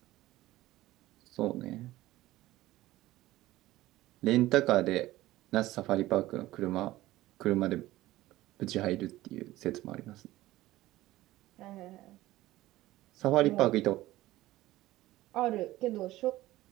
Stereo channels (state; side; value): quieter; left; 16.6 dB